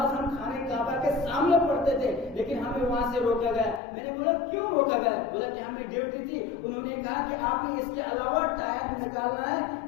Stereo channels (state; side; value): drops out; right; at 3.8 s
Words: ہم خانے کعبہ کے سامنے پڑھتے تھے لیکن ہمیں وہاں سے روکا گیا. میں نے بولا کیوں روکا گیا؟ بولا کہ ہمیں ڈیوٹی تھی. انہوں نے کہا کہ آپ نے اس کے علاوہ ٹائم نکالنا ہے